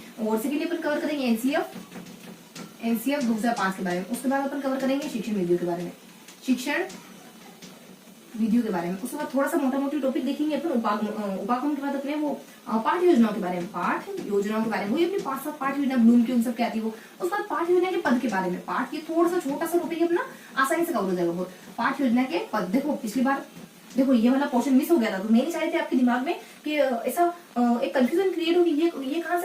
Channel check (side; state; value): both; identical; correlation 1.00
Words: और सेकेंडली अपन कवर करेंगे एनसीएफ 2005 के बारे में। उसके बाद अपन कवर करेंगे शिक्षण विधियों के बारे में, शिक्षण विधियों के बारे में। उसके बाद थोड़ा सा मोटा मोटी टॉपिक देखेंगे अपन उपागम के बाद अपने वो पाठ योजनाओं के बारे में, वही अपनी 5-7 पाठ योजना ब्लूम की उन सब की आती है वो। उसके बाद पाठ योजना के पद के बारे में, पाठ ये थोड़ा सा छोटा सा टॉपिक अपना आसानी से कवर हो जाएगा बहुत। पाठ योजना के पद, देखो पिछली बार देखो ये वाला पोर्शन मिस हो गया था, तो मैं नहीं चाह रही थी आपके दिमाग में कि ऐसा एक कंफ्यूजन क्रिएट होगी, ये कहां